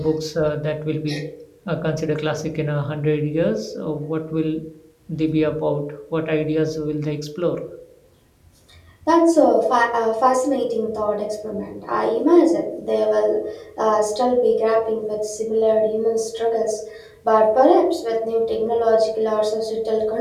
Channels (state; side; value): identical; both; correlation 1.00